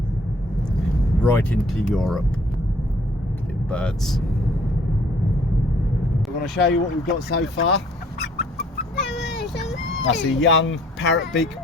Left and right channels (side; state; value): both; normal; correlation 0.59